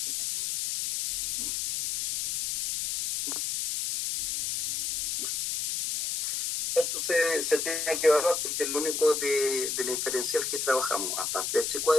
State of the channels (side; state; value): left; noise; hiss, 1 dB below the sound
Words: esto se tiene que evaluar porque es lo único de la inferencial que trabajamos, aparte del h